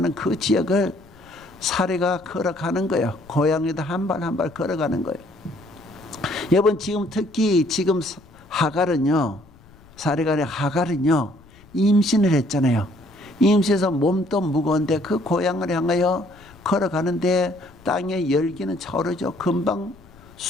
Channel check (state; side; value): noise; left; rumble, 25 dB below the sound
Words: 그 지역을 사례가 걸어가는 거예요. 고양이도 한 발 한 발 걸어가는 거예요. 여러분, 지금 특히 지금 하갈은요, 사례가 아니라 하갈은요, 임신을 했잖아요. 임신해서 몸도 무거운데 그 고향을 향하여 걸어가는데 땅의 열기는 차오르죠. 금방